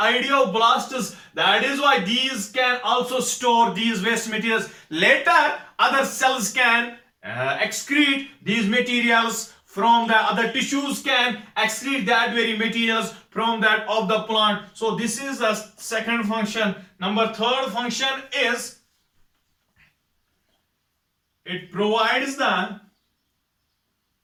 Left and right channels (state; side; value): identical; both; correlation 1.00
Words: That is why these can also store these waste materials. Later other cells can excrete these materials from the other tissues, can excrete that very materials from that of the plant. So this is the second function. Number third function is it provides the